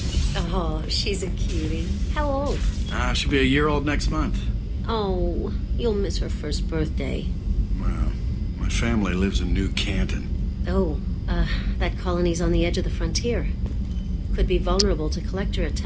Oh, she's a cutie. How old? She'll be a year old next month. Oh, you'll miss her first birthday. Well, my family lives in New Canton. Oh, that colony's on the edge of the frontier. Could be vulnerable to collector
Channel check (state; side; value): identical; both; correlation 1.00